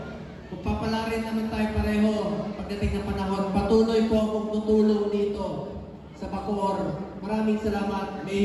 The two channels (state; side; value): identical; both; correlation 1.00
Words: kung papalarin naman tayo pareho pagdating ng panahon, patuloy po akong tutulong dito sa Bacoor. Maraming salamat,